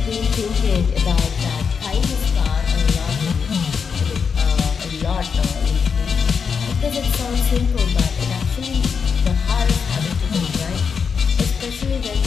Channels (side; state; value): right; quieter; 6.1 dB